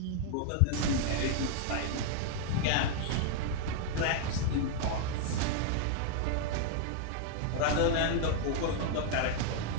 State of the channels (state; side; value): different; both; correlation 0.00